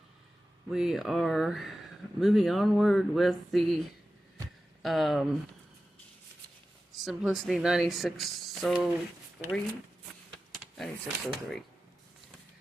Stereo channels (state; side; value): normal; both; correlation 0.94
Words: we are moving onward with the Simplicity 9603.